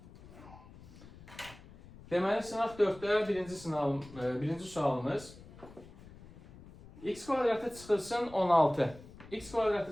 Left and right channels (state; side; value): noise; left; rumble, 19 dB below the sound